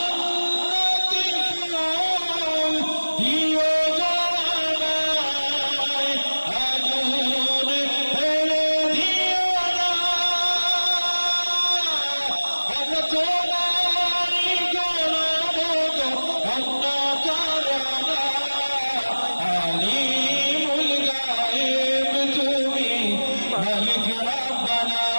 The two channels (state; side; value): inverted; both; correlation -1.00